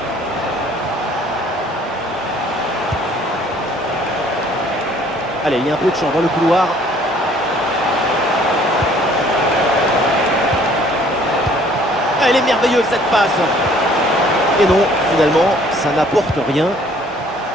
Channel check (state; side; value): normal; both; correlation 0.58